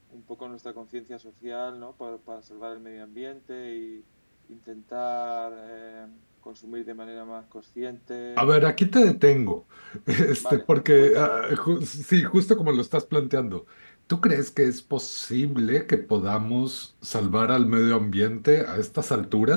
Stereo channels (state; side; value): inverted; both; correlation -1.00